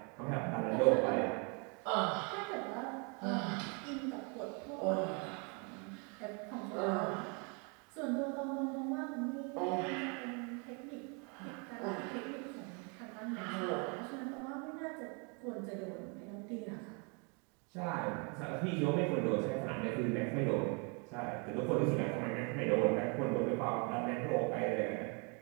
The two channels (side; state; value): left; quieter; 34.6 dB